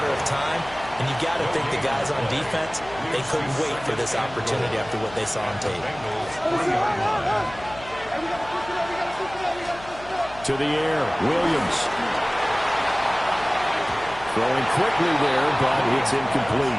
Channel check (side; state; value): left; noise; hum, 18 dB below the sound